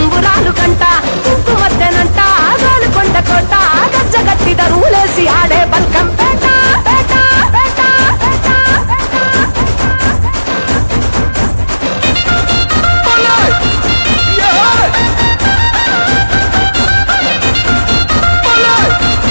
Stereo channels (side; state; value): both; inverted; correlation -1.00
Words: కంట కుంకుమద్దెనంట గాలుకొండ కోట గజ్జగట్టి దరువులేసి ఆడే బల్కం పేట పేట పేట పేట